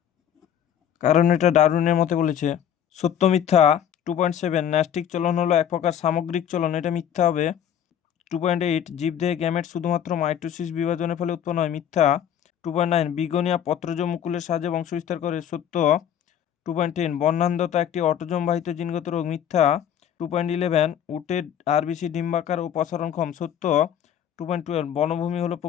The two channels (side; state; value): right; quieter; 9.6 dB